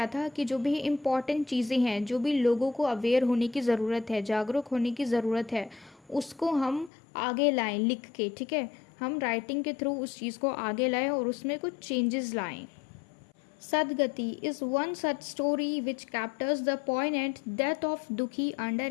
था कि जो भी इम्पॉर्टेंट चीज़ें हैं, जो भी लोगों को अवेयर होने की ज़रूरत है, जागरूक होने की ज़रूरत है, उसको हम आगे लाएं लिख के, ठीक है। हम राइटिंग के थ्रू उस चीज़ को आगे लाएं और उसमें कुछ चेंजेस लाएं। Sadgati is one such story which captures the point death of Dukhi under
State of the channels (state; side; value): drops out; right; at 6.9 s